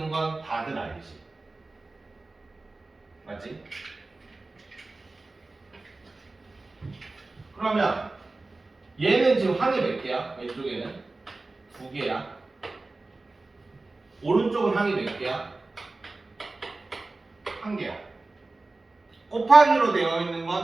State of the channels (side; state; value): left; quieter; 3.3 dB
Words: 건 다들 알지? 맞지? 그러면 얘는 지금 항이 몇 개야? 왼쪽에는 2개야. 오른쪽은 항이 몇 개야? 1개야. 곱하기로 되어 있는